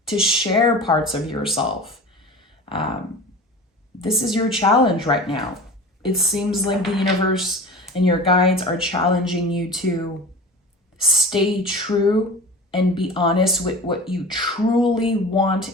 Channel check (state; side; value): normal; both; correlation 0.36